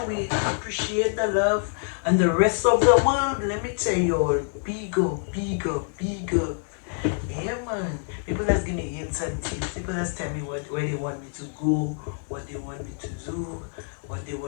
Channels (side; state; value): right; silent; 59 dB below the other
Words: we appreciate the love and the rest of the world. Let me tell you all, bigger, bigger, bigger. Yeah, man. People just give me hints and tips. People just tell me where they want me to go, what they want me to do, what they